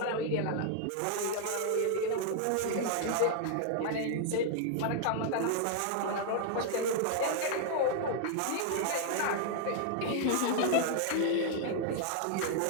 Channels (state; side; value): different; both; correlation 0.00